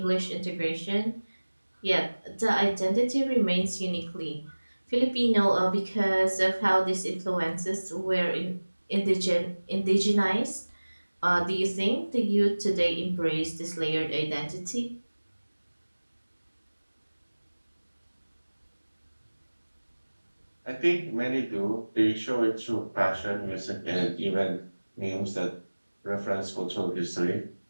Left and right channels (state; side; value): inverted; both; correlation -1.00